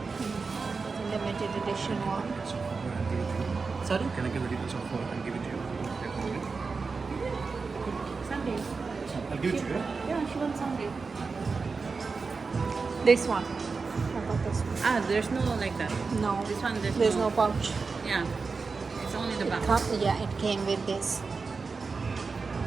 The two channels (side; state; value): left; quieter; 4.5 dB